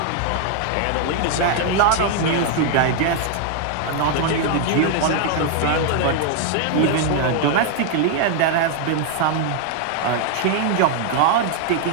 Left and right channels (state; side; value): different; both; correlation 0.00